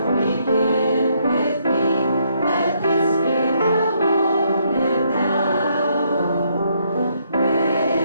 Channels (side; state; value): both; inverted; correlation -0.73